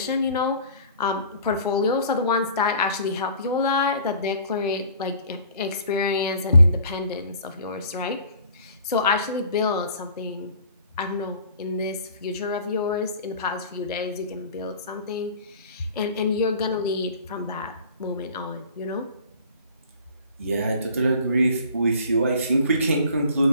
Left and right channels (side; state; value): both; inverted; correlation -0.48